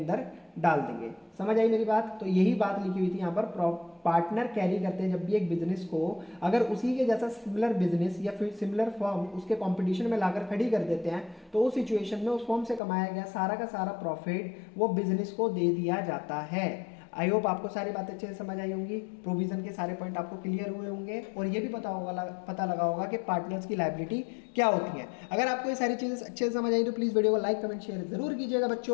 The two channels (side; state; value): right; drops out; at 12.8 s